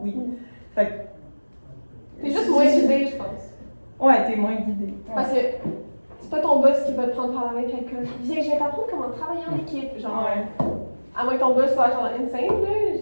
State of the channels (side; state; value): both; inverted; correlation -1.00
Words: oui. Fait que. T'es juste moins guidé, je pense. Ouais, t'es moins guidé. Ouais. Parce que c'est pas ton boss qui va te prendre par la main quelqu'un. Viens, je vais t'apprendre comment travailler en équipe. Genre, Ouais. à moins que ton boss soit genre insane, là.